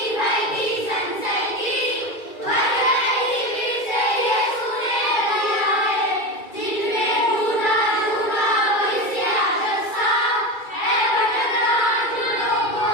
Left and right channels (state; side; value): late; right; 2.3 ms